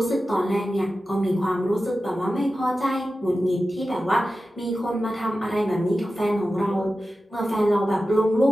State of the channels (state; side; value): normal; both; correlation 0.93